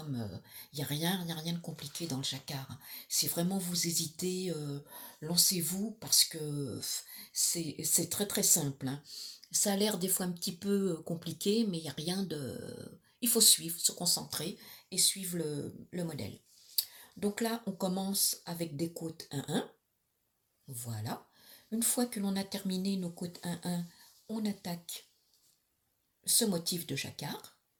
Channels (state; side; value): identical; both; correlation 1.00